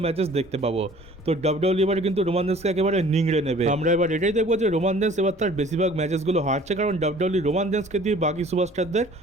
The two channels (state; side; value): normal; both; correlation 0.51